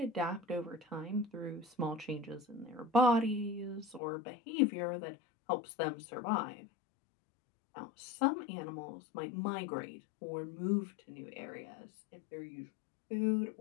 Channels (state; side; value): drops out; right; at 4.0 s